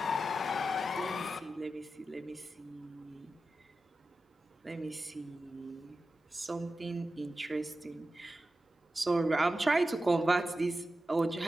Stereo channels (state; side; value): normal; both; correlation 0.92